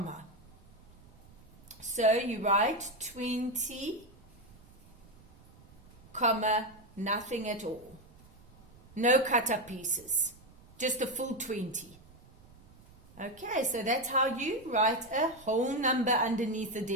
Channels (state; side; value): noise; right; rumble, 24 dB below the sound